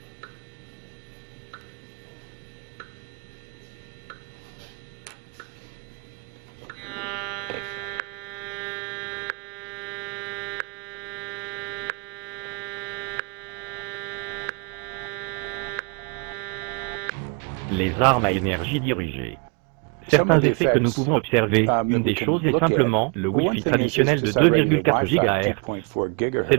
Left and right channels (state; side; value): quieter; left; 35.8 dB